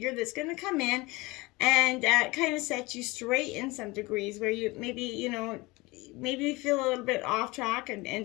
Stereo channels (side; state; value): right; quieter; 23.1 dB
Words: that's going to come in and kind of set you straight in some degrees where you maybe, you know, maybe you feel a little bit off track,